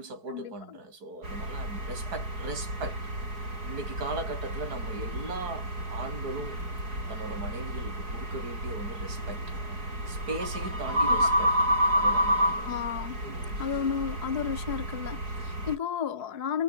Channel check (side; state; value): left; late; 4.7 ms